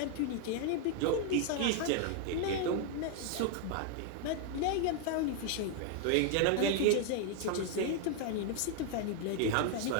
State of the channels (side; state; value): both; different; correlation 0.00